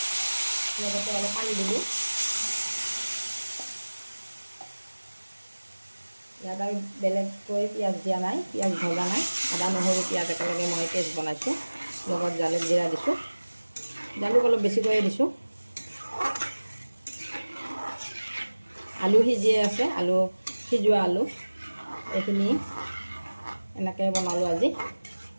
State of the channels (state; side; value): inverted; both; correlation -1.00